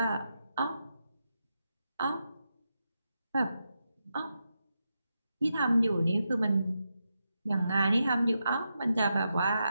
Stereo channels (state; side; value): inverted; both; correlation -0.86